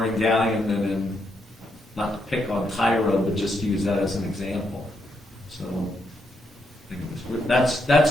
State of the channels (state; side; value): normal; both; correlation 0.79